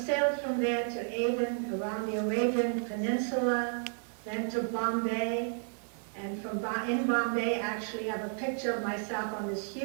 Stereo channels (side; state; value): left; silent; 56 dB below the other